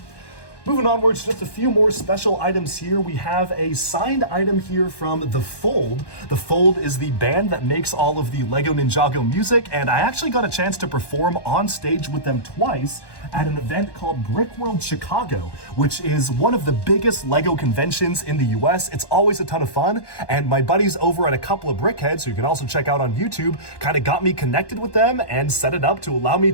Moving onwards, just a few more special items here. We have a signed item here from The Fold. The Fold is the band that makes all of the Lego Ninjago music, and I actually got a chance to perform on stage with them twice at an event called Brickworld Chicago, which is one of the biggest Lego conventions in the US. It's always a ton of fun, and my buddies over at a couple of Brickheads, who you can also check out on YouTube, kind of got me connected with them and set it up to allow me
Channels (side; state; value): right; late; 1.1 ms